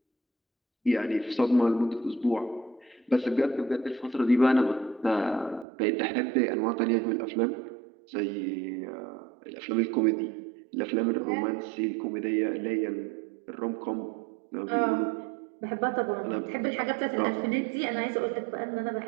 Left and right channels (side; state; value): left; drops out; at 5.7 s